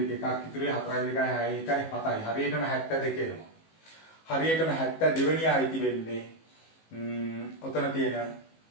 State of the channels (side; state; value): right; late; 19 ms